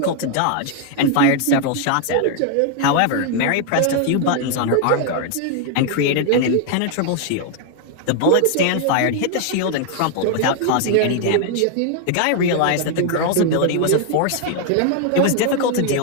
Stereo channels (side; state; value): both; different; correlation 0.00